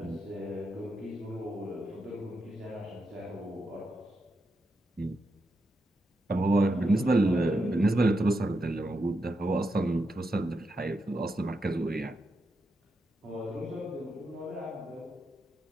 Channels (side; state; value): both; normal; correlation 0.85